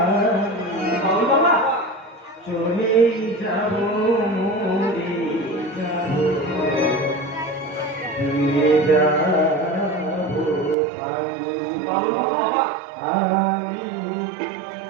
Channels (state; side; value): drops out; left; at 10.8 s